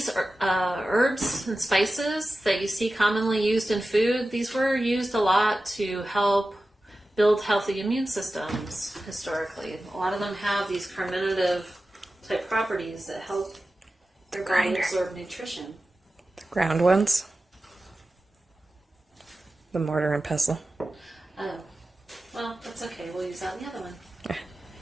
herbs and spices that you see commonly used in food, these were used a lot to help build healthy immune systems historically. A lot of them have these carminative type properties that help your body absorb nutrition. The ground ones? The mortar and pestle. Oh, well, that's okay. We'll use that in the other one.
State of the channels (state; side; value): normal; both; correlation 0.94